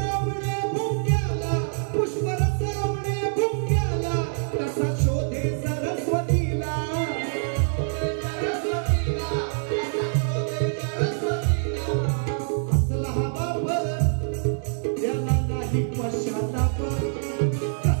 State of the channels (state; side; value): silent; left; digital silence